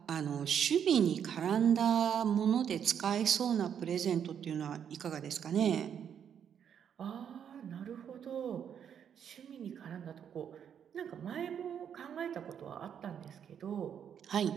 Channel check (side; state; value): left; quieter; 8.4 dB